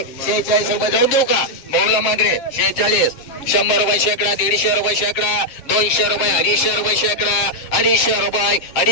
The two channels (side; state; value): right; late; 7.3 ms